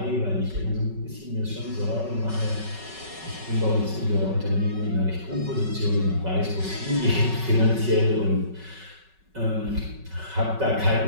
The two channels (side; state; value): left; late; 5.3 ms